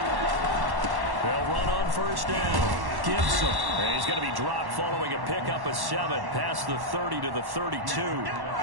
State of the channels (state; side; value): late; left; 1.1 ms